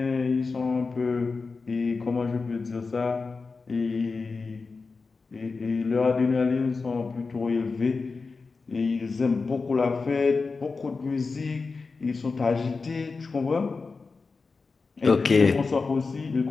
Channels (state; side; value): quieter; right; 4.3 dB